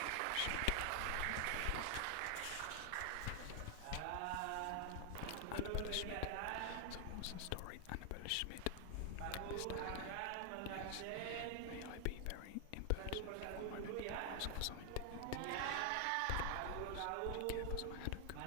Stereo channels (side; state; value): both; different; correlation 0.00